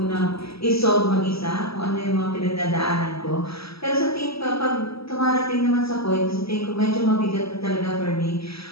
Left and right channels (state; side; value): late; right; 0.76 ms